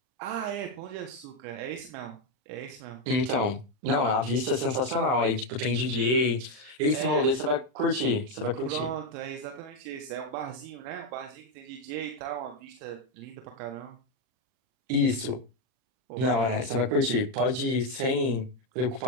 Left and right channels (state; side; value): late; left; 39 ms